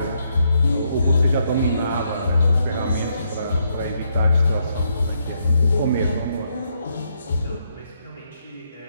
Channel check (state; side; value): inverted; both; correlation -0.77